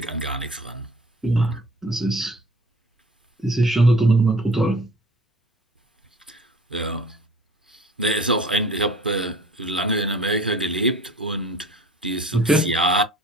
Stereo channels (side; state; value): both; normal; correlation 0.48